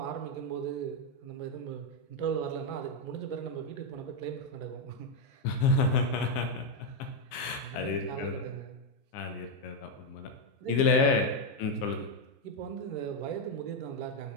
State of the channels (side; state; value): right; late; 15 ms